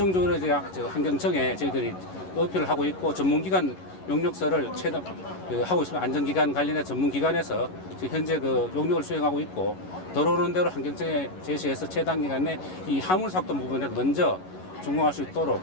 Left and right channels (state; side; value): late; right; 11 ms